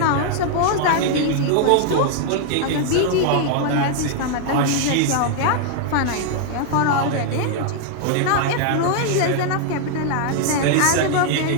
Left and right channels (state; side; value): different; both; correlation 0.00